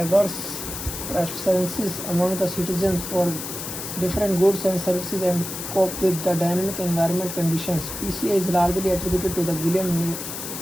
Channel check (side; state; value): left; noise; hiss, 7 dB below the sound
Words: preferences among the citizens for different goods and services and cope with the dynamic environment conditions. PCA is largely attributed to the William